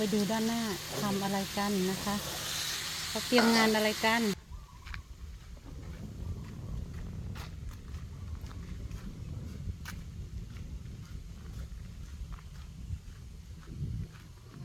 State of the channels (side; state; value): both; identical; correlation 1.00